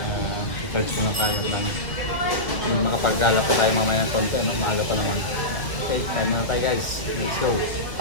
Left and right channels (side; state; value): right; late; 1.6 ms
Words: charge muna tayo. Makapag-gala pa tayo mamaya ng konti, no? Maaga pa naman. Okay, kain muna tayo guys. Let's go.